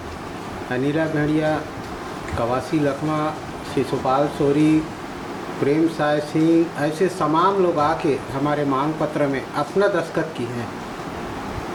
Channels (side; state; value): both; identical; correlation 1.00